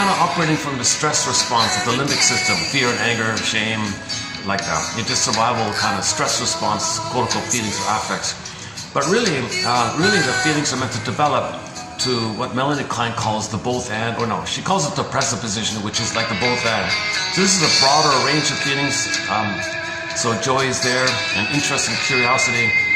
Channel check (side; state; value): both; identical; correlation 1.00